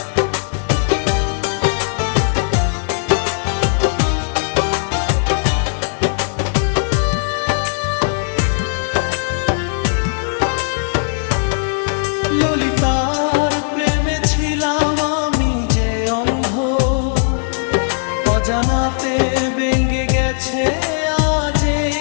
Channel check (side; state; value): right; silent; digital silence